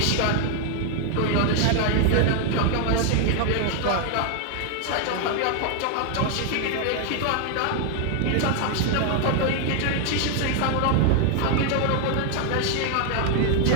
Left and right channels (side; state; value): both; different; correlation 0.00